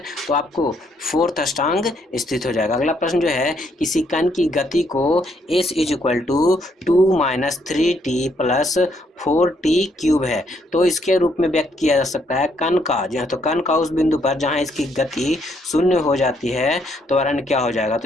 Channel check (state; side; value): normal; both; correlation 0.72